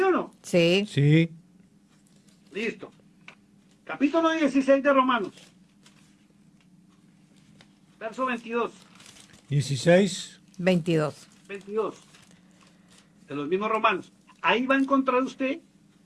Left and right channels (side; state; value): both; identical; correlation 1.00